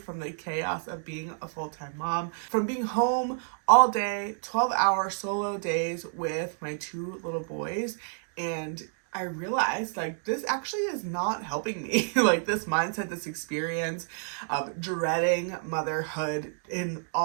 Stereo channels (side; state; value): left; silent; digital silence